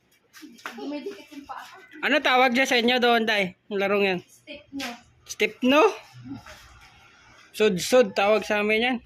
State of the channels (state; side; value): identical; both; correlation 1.00